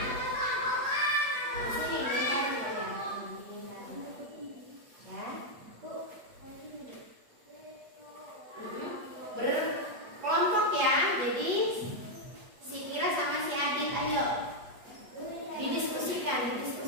Di sini dicari ya. Berkelompok ya. Jadi si Kira sama si Adit, ayo didiskusikan.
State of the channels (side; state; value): left; late; 8.3 ms